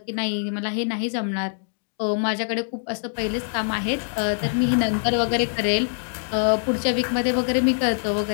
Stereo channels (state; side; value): silent; right; digital silence